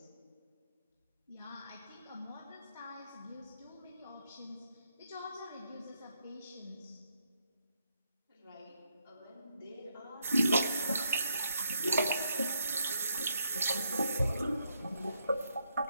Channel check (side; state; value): both; inverted; correlation -0.77